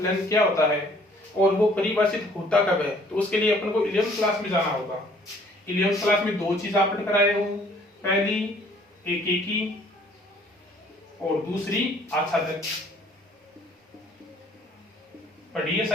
क्या होता है और वो परिभाषित होता कब है, तो उसके लिए अपन को 11th क्लास में जाना होगा। 11th क्लास में दो चीज आपने कराए हो, पहली एकेकी और दूसरी आच्छादक। पढ़िए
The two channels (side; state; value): both; normal; correlation 0.58